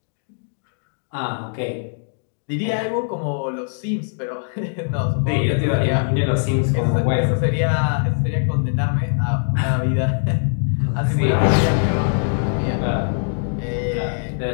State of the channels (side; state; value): right; silent; digital silence